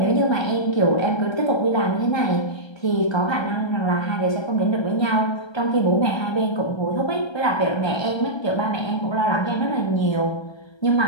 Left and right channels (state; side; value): late; right; 1.3 ms